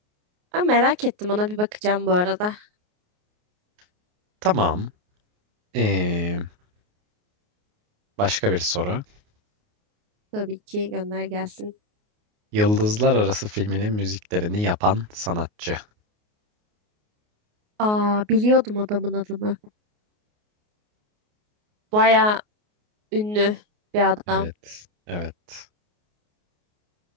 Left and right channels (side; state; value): left; late; 28 ms